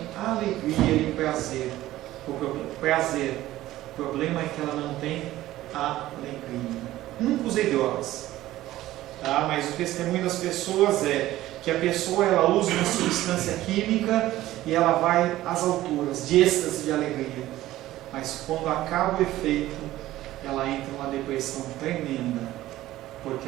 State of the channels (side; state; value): left; quieter; 15.3 dB